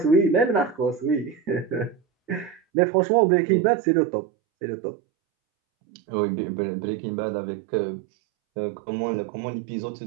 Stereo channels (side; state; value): left; drops out; at 2.6 s